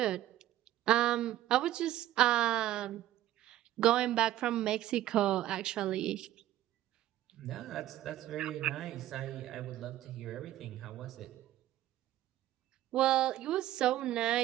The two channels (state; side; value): quieter; left; 13.8 dB